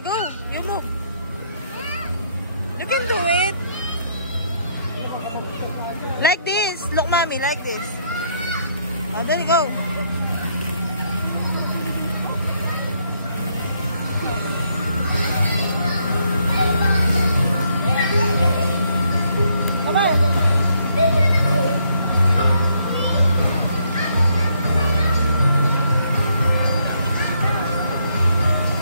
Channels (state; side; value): inverted; both; correlation -0.71